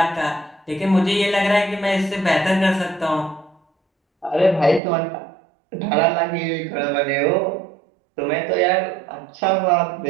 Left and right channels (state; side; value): drops out; left; at 4.8 s